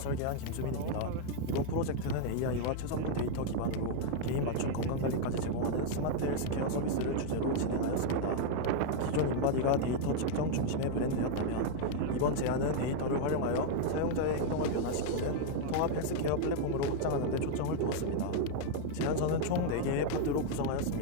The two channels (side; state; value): both; different; correlation 0.00